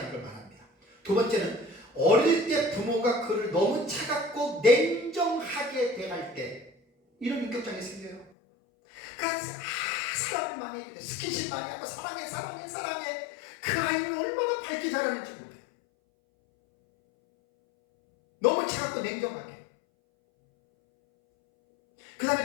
걸 말합니다. 두 번째는 어릴 때 부모가 그를 너무 차갑고 냉정하게 대할 때 이런 인격장애 생겨요. 그러니까 사랑을 많이 해주고 스킨십 많이 하고 사랑해 그 아이는 얼마나 밝게 자라는지 몰라요. 너무 차갑고 냉정하게. 그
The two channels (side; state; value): right; drops out; at 8.3 s